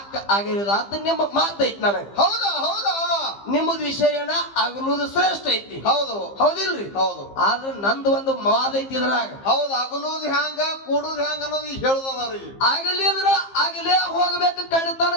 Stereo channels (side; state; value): right; late; 15 ms